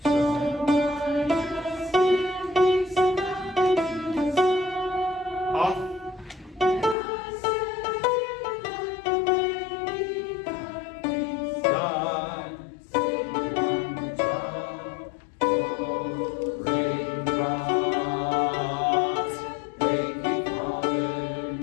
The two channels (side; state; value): right; drops out; at 7.0 s